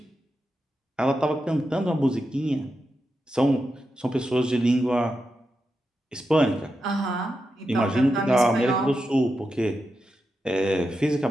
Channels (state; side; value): normal; both; correlation 0.88